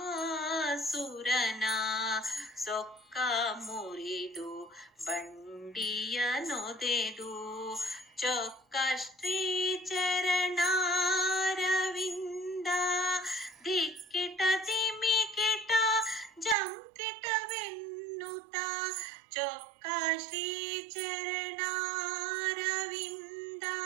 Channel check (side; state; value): left; drops out; at 16.6 s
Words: ಸೊಕ್ಕ ಮುರಿದು ಬಂಡಿಯ ನೊದೆದು, ಚೊಕ್ಕ ಶ್ರೀ ಚರಣಾರವಿಂದ ದಿಕ್ಕಿಟ ದಿಮಿಕಿಟ ಜಂಕಿಟವೆನ್ನುತ್ತ, ಚೊಕ್ಕ ಶ್ರೀ ಚರಣಾರವಿಂದ